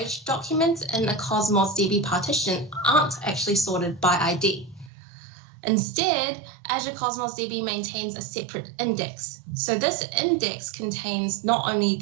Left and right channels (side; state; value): left; drops out; at 4.9 s